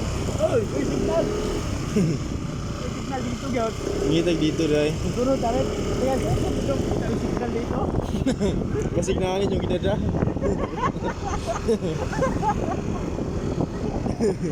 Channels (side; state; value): both; identical; correlation 1.00